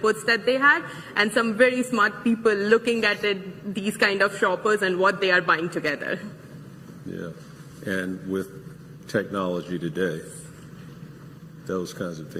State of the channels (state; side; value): identical; both; correlation 1.00